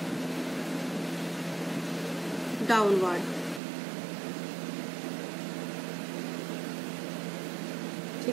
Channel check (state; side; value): drops out; left; at 3.6 s